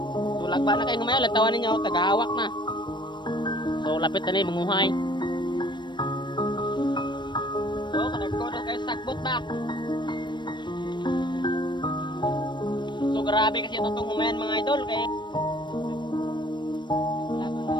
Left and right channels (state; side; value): late; right; 0.22 ms